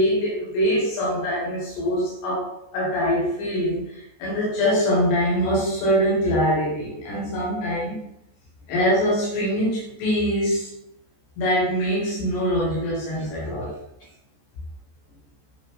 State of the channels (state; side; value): late; right; 14 ms